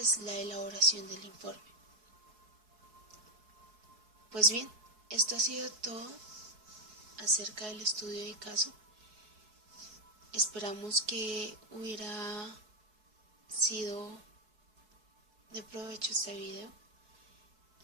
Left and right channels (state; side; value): late; left; 4.7 ms